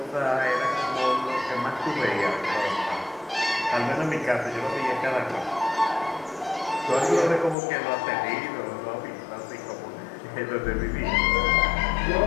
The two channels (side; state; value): right; drops out; at 7.6 s